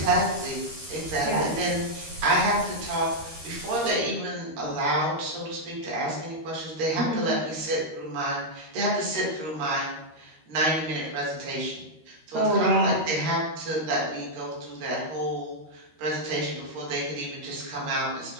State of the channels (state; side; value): late; left; 13 ms